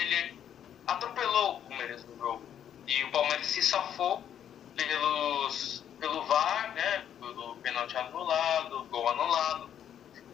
atropelou o Palmeiras no jogo, e o Palmeiras se safou pelo VAR, né, pelo pênalti anulado, gol anulado,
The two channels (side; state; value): right; quieter; 9.6 dB